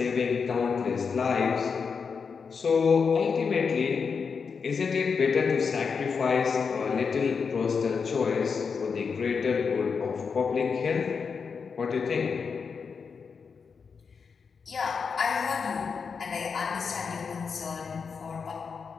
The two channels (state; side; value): quieter; right; 5.7 dB